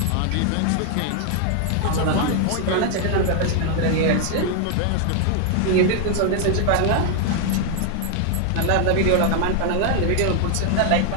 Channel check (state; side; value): different; both; correlation 0.00